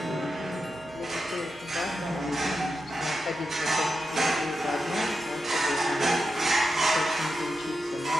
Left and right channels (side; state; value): both; normal; correlation 0.89